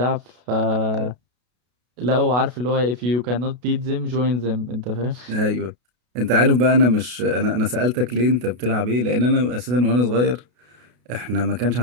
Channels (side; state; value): left; late; 32 ms